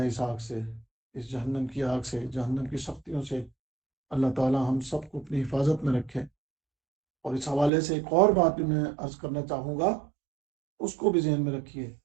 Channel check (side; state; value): left; drops out; at 7.7 s